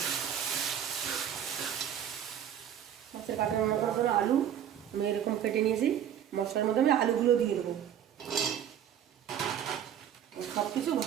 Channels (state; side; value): quieter; left; 9.6 dB